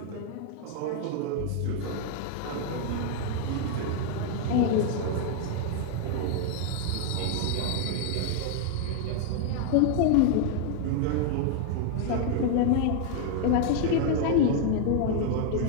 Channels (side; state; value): both; different; correlation 0.00